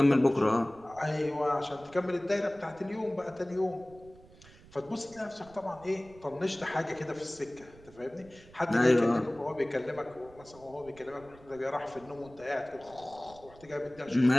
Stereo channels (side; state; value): right; noise; rumble, 23 dB below the sound